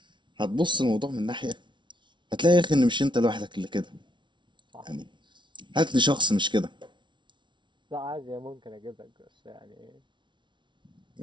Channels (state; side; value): late; left; 0.23 ms